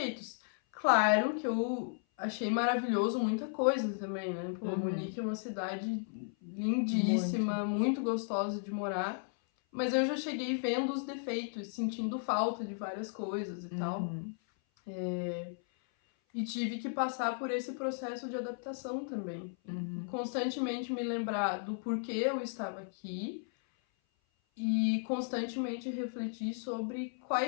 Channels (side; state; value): right; silent; 55 dB below the other